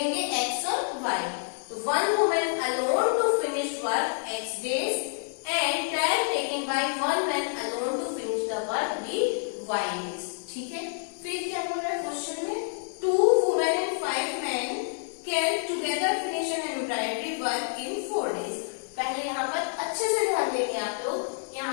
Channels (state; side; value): silent; right; digital silence